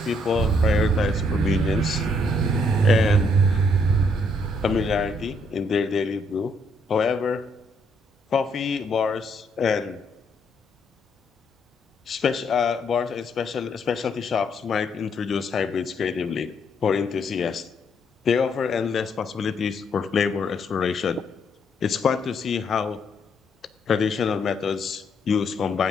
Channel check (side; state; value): both; normal; correlation 0.71